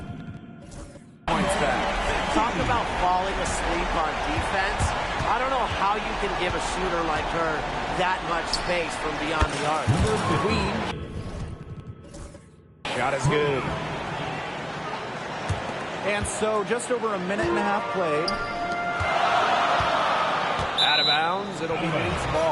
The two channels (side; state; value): both; identical; correlation 1.00